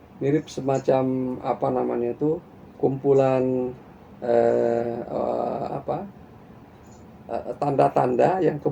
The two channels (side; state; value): both; identical; correlation 1.00